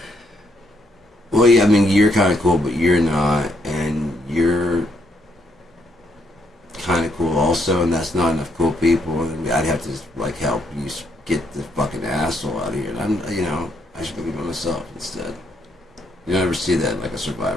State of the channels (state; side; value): normal; both; correlation 0.74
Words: Well, yeah, I mean, you're kind of cool, but you're not, and you're kind of cool also, and that's not enough cool people, and I'd have to like help you get the fucking asshole out of here. And I'm, you know, I should go be by myself instead. You don't ever see that in like a